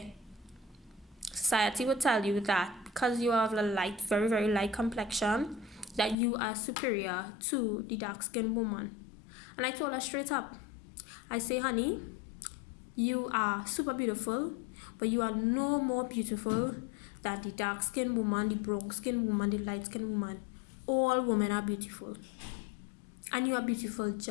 society will tell you that because you have a light, very, very light complexion, that you are superior to the dark-skinned woman. And I told her straight up, I say, honey, you are super beautiful, but you are no more beautiful than the dark-skinned woman, the brown-skinned woman, the light-skinned woman. All women are beautiful. And you are beautiful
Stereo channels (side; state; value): right; drops out; at 6.2 s